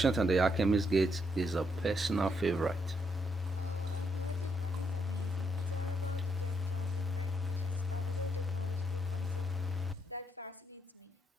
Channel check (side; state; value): both; normal; correlation 0.77